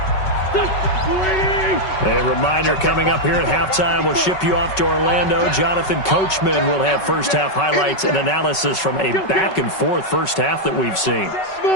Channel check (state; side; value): late; right; 5.3 ms